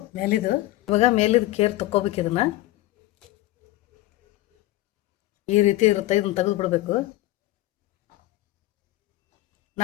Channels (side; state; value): right; quieter; 16.9 dB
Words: ಮೇಲಿದು. ಇವಾಗ ಮೇಲಿದು ಕೇರ್ ತಕ್ಕೋಬೇಕು. ಇದನ್ನು ಈ ರೀತಿ ಇರುತ್ತೆ, ಇದನ್ನು ತೆಗೆದು ಬಿಡಬೇಕು.